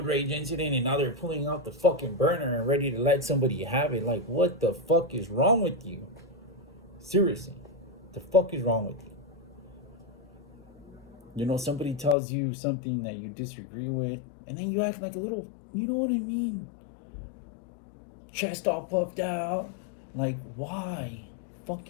rage incident and now they're pulling out the fucking burner and ready to let somebody have it. Like, what the fuck is wrong with you? Seriously. The fuck is wrong with you? You know, somebody tells you something that you disagree with, and then you act like a little, you know what I mean? Chest all puffed out. Like, why?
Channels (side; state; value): right; drops out; at 12.2 s